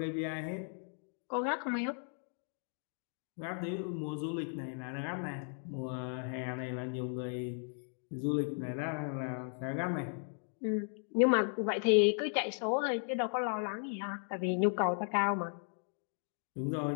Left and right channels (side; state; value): right; silent; 54 dB below the other